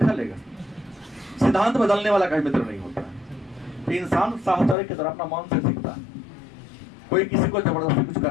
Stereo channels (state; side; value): drops out; right; at 4.8 s